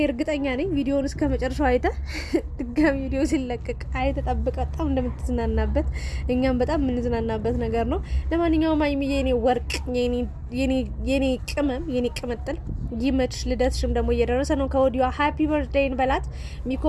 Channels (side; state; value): both; identical; correlation 1.00